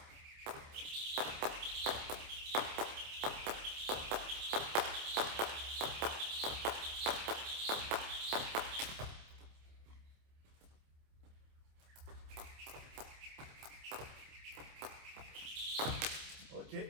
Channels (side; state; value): left; late; 27 ms